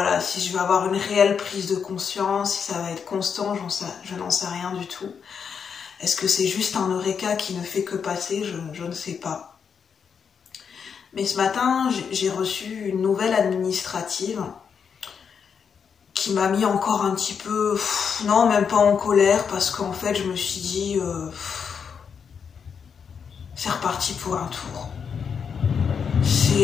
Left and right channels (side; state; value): right; quieter; 6.7 dB